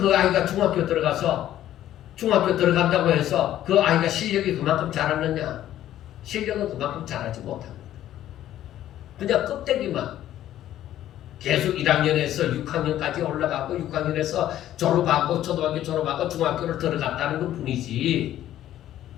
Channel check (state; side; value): quieter; right; 12.5 dB